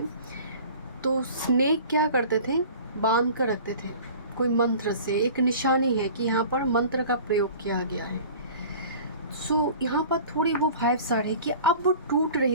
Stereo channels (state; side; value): inverted; both; correlation -0.43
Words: तो स्नेक क्या करते थे, बांध कर रखते थे कोई मंत्र से, एक निशानी है कि यहाँ पर मंत्र का प्रयोग किया गया है। सो यहाँ पर थोड़ी वो वाइब्स आ रही कि अब वो टूट